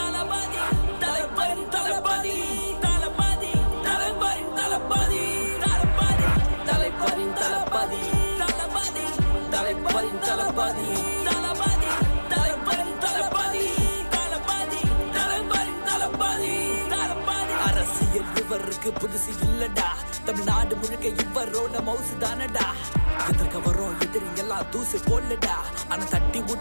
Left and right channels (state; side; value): inverted; both; correlation -1.00